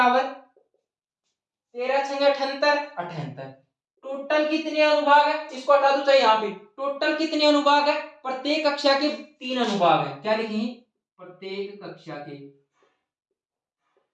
13 6 78 78। टोटल कितने अनुभाग है? इसको हटा दो चाहे यहाँ पे। टोटल कितने अनुभाग है? प्रत्येक कक्षा के 3 अनुभाग है। क्या लिखेंगे? प्रत्येक कक्षा के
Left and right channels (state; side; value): identical; both; correlation 1.00